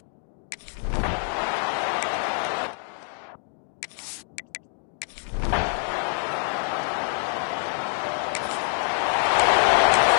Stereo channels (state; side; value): silent; right; 61 dB below the other